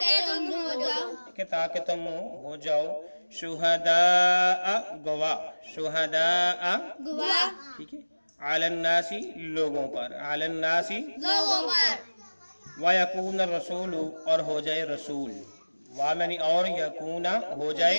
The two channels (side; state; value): both; inverted; correlation -1.00